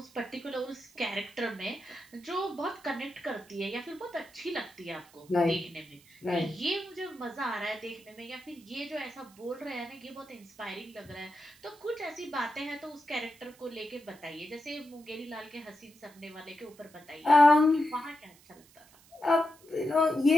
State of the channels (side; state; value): right; noise; hiss, 26 dB below the sound